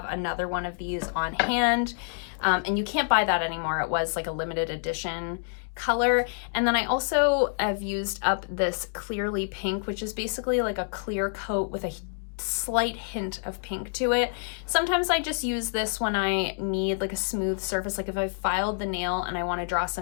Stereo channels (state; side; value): silent; right; digital silence